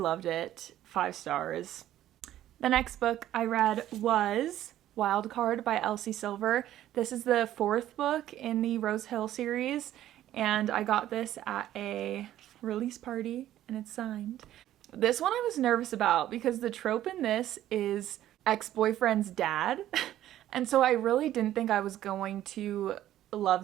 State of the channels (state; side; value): quieter; left; 12.9 dB